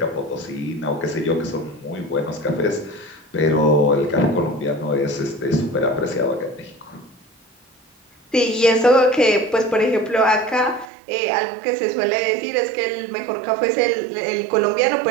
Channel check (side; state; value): left; drops out; at 10.9 s